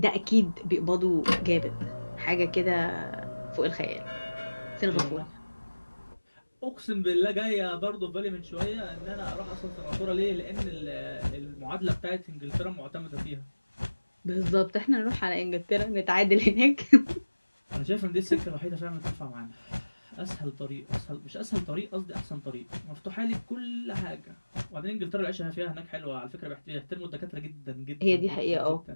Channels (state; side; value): inverted; both; correlation -1.00